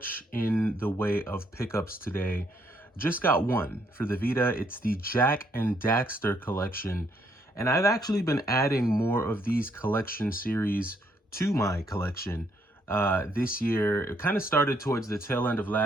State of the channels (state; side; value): normal; both; correlation 0.71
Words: in the way of pickups today. Just got one for the Vita. It's the Jak and Daxter collection. And I've actually been adding more of these collection series to my collection this year. It kind of started towards the tail end of